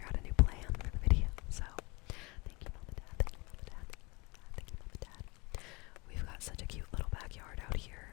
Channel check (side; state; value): right; quieter; 26.6 dB